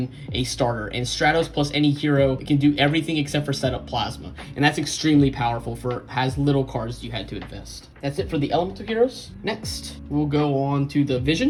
a starter. And Stratos plus any hero can do everything except for set up Plasma. And that's extremely powerful has little cards you had to invest. That's it for the elemental heroes. Next, we'll go on to the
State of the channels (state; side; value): identical; both; correlation 1.00